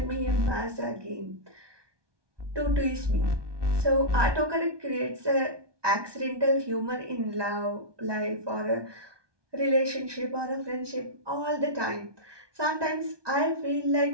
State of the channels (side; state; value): left; late; 1.2 ms